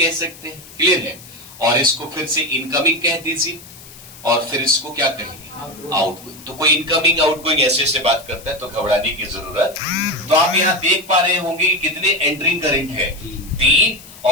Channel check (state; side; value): noise; left; hiss, 19 dB below the sound